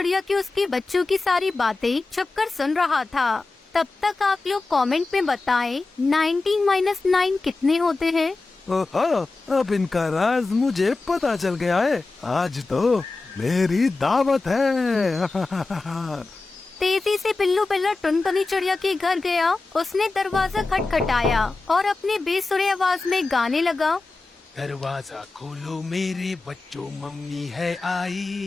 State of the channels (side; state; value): right; quieter; 3.6 dB